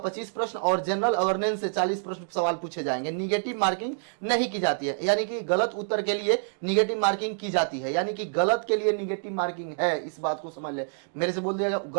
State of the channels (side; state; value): left; silent; digital silence